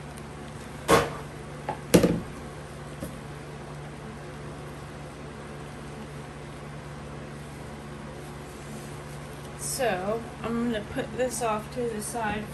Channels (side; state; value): both; identical; correlation 1.00